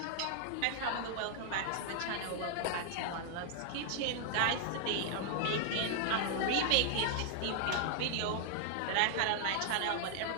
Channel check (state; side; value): different; both; correlation 0.00